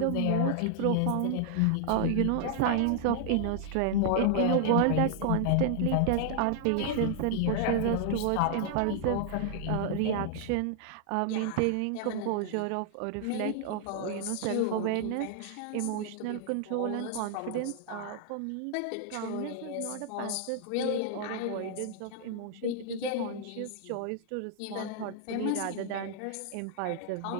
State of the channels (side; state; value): both; different; correlation 0.00